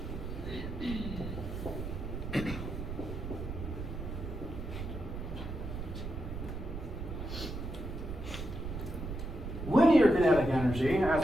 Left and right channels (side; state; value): right; noise; rumble, 6 dB below the sound